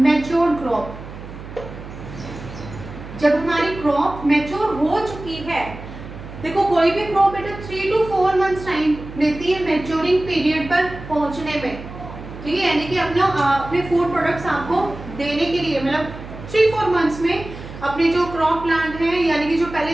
crop. जब हमारी क्रॉप मैच्योर हो चुकी है, देखो कोई भी क्रॉप बेटा 3 to 4 मंथ्स टाइम लेती है मैच्योरिंग पीरियड पर पहुंचने में, ठीक है, यानी कि अपने फूड प्रोडक्ट्स आपको देने के लिए, मतलब 3-4 मंथ्स में अपने जो क्रॉप प्लांट है, यानी कि जो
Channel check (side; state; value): right; noise; hum, 13 dB below the sound